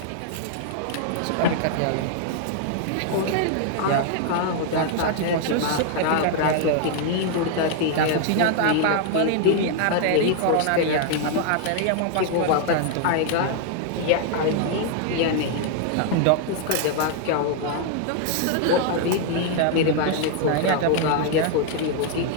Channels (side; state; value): both; different; correlation 0.00